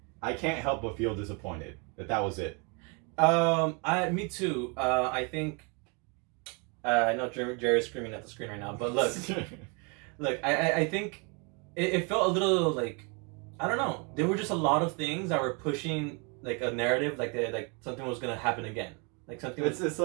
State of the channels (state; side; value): quieter; left; 33.3 dB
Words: I can't help but feel disappointed that was it. Me too. I think. I know Jerry's screaming at the screen right now, but look, I think it felt a little like, I don't know. There were just a lot of things that were pushing like a narrative, like something was gonna happen again, like something. It's